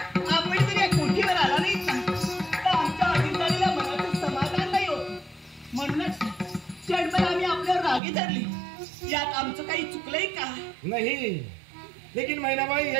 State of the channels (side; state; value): left; drops out; at 8.0 s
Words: यात आमचं काही चुकलंय का? नहीं, लेकिन मैना भाई